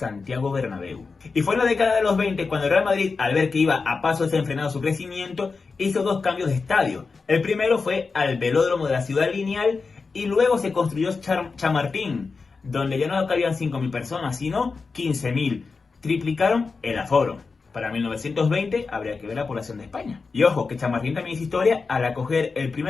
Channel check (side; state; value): right; quieter; 4.5 dB